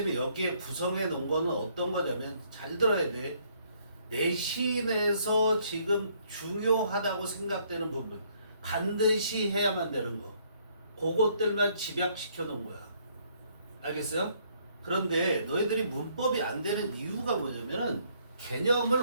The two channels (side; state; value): both; inverted; correlation -0.66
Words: 여기에 구성해 놓은 거는 어떤 거냐면, 잘 들어야 돼. 내신에서 지금 중요하다고 생각되는 부분, 반드시 해야만 되는 거, 그것들만 집약시켜 놓은 거야. 알겠어요? 그런데 너희들이 문법이 안 되는 이유가 뭐냐면은